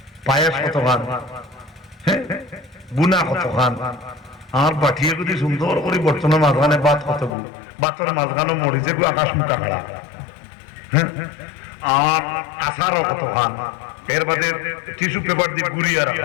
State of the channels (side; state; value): right; drops out; at 7.4 s